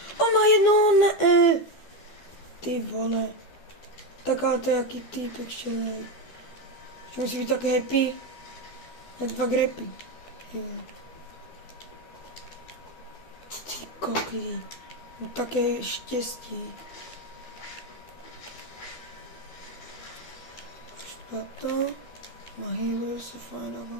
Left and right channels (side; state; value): right; late; 12 ms